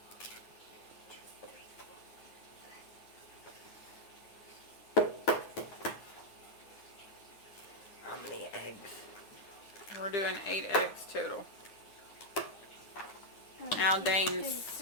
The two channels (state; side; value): late; right; 9.6 ms